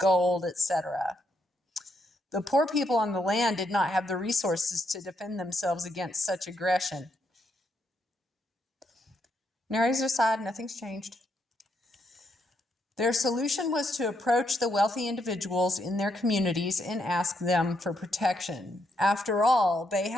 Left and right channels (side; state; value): both; normal; correlation 0.77